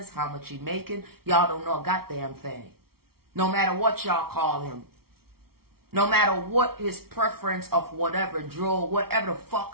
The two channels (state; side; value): late; left; 0.94 ms